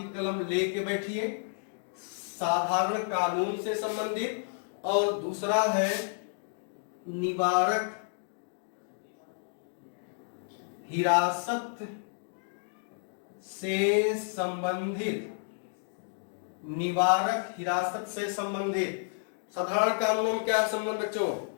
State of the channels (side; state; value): right; silent; digital silence